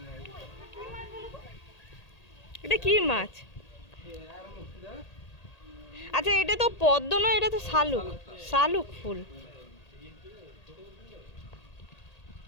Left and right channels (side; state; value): right; late; 1.8 ms